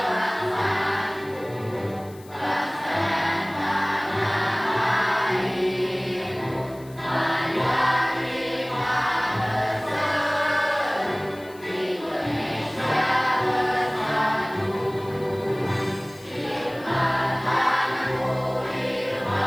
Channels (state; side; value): noise; left; hiss, 24 dB below the sound